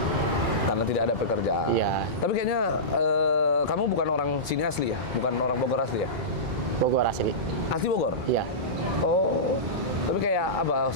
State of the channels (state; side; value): normal; both; correlation -0.18